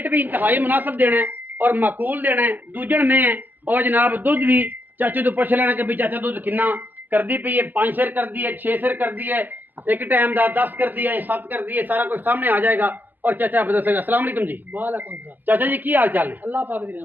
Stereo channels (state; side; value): late; left; 0.086 ms